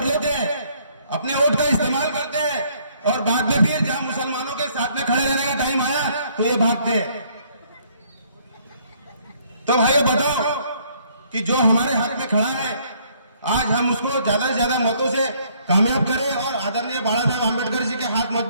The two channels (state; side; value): inverted; both; correlation -0.64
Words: लेते हैं, अपने वोट का इस्तेमाल करते हैं और बाद में फिर जहां मुसलमानों के साथ में खड़े रहने का टाइम आया तो ये भागते हैं। तो भाइयों बताओ कि जो हमारे हक में खड़ा है, आज हम उसको ज्यादा से ज्यादा मतों से कामयाब करें और आदरणीय बाला साहब आम्बेडकर जी के हाथ